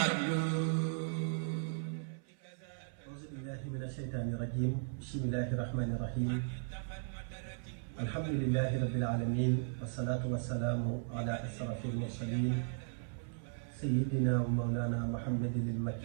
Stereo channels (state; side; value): silent; left; 53 dB below the other